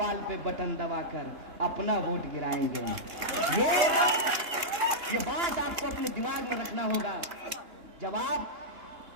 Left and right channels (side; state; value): left; late; 2.9 ms